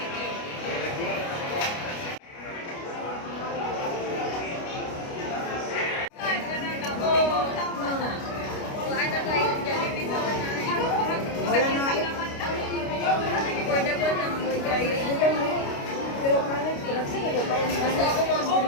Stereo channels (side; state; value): right; late; 29 ms